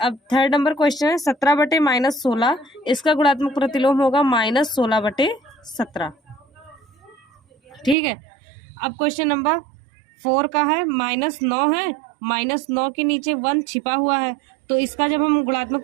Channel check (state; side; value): drops out; left; at 8.0 s